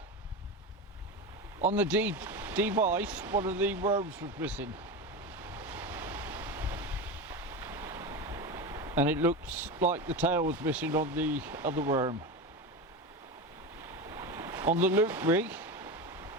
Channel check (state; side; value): normal; both; correlation 0.22